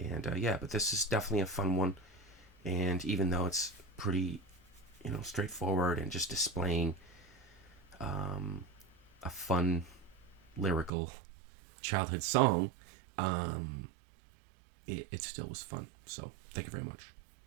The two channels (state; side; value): drops out; left; at 10.9 s